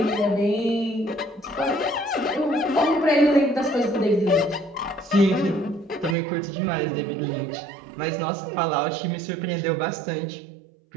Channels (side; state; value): left; drops out; at 6.2 s